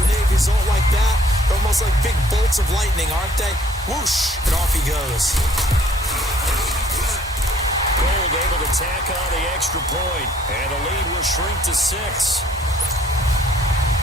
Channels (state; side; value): normal; both; correlation 0.60